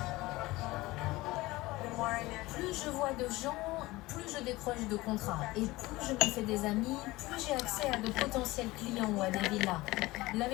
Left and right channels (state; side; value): quieter; right; 19.8 dB